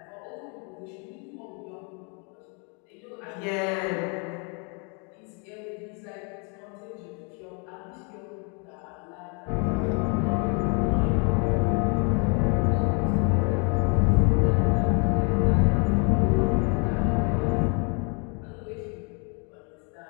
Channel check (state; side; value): quieter; right; 35.7 dB